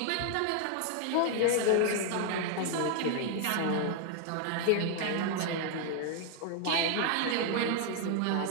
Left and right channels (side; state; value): both; different; correlation 0.00